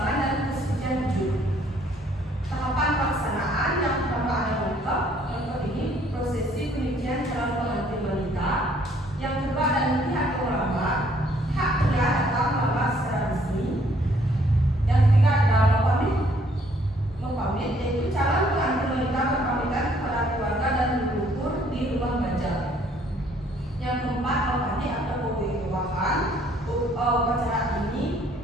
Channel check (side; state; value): both; normal; correlation 0.63